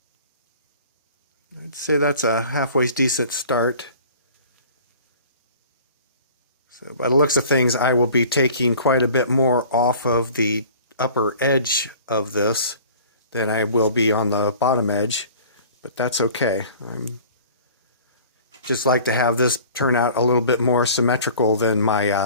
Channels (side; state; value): both; inverted; correlation -0.46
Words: I'd say that's a halfway decent start. So by the looks of things, I will be taking quite a bit more off of the upper edge of this than I will be on the bottom edge, but that's okay. I'm just like to have this turn out a little bit more symmetrical than